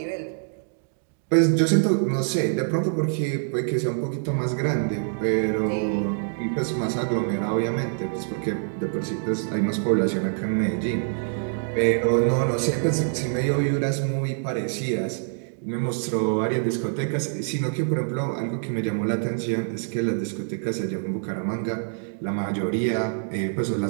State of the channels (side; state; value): left; silent; digital silence